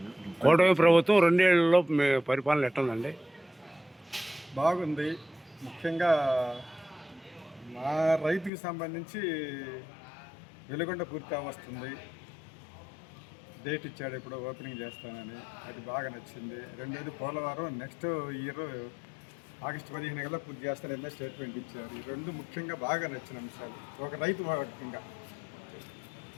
కూటమి ప్రభుత్వం 2 ఏళ్లలో పరిపాలన ఎట్టుందండి? బాగుంది. ముఖ్యంగా మా రైతుకి సంబంధించి వెలుగొండ పూర్తి వస్తుంది. డేట్ ఇచ్చాడు, ఇప్పుడు ఓపెనింగ్ చేస్తానని. అది బాగా నచ్చింది. రెండోది పోలవరం నెక్స్ట్ ఇయర్ ఆగస్టు 15 కల్లా పూర్తి చేస్తానని స్టేట్మెంట్ ఇచ్చారు. ఈ 2 ముఖ్యంగా బాగా నచ్చిన అంశాలు ఒక రైతు ముఖ్యంగా.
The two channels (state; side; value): drops out; right; at 8.5 s